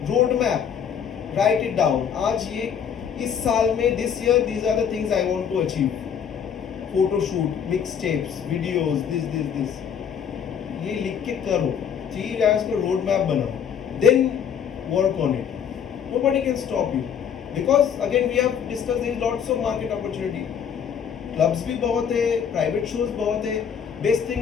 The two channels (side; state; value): right; quieter; 7.8 dB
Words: Road map, write it down. आज ये इस साल में this year these are the things I want to achieve. Photo shoot, mix tapes, videos, this ये लिख के करो, 3 years को रोड मैप बनाओ, then work on it. Nobody can stop you, because again we have discuss there is lots of market opportunity. Clubs भी बहुत है, private shows बहुत है। बेस्ट